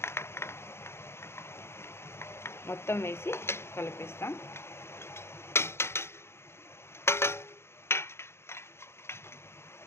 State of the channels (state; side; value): late; right; 0.12 ms